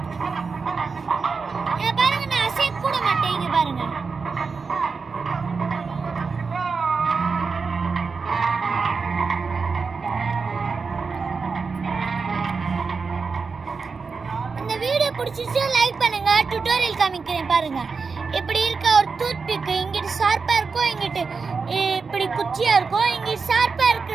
பாருங்க நான் அசைய கூட மாட்டேன். இங்க பாருங்க. இந்த வீடியோ பிடிச்சிருச்சா லைக் பண்ணுங்க. டியூட்டோரியல் காமிக்கிறேன் பாருங்க. இப்படி இருக்க ஒரு டூத்பிக் இங்கிட்டு ஷார்ப்பா இருக்கும், இங்கிட்டு இப்படி குச்சியா இருக்கும். இங்கிட்டு ஷார்ப்பா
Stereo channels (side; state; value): left; quieter; 4.9 dB